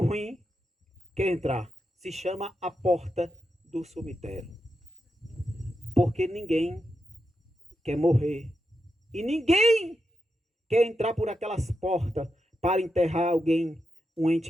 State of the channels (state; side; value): normal; both; correlation 0.87